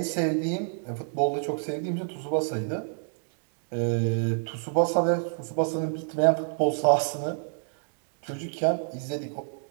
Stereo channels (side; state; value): left; silent; digital silence